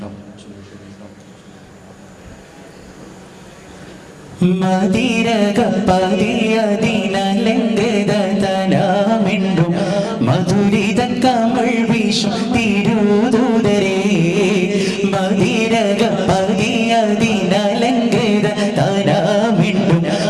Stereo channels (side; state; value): both; identical; correlation 1.00